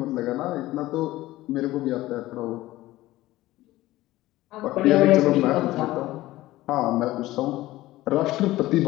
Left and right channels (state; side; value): quieter; right; 16.9 dB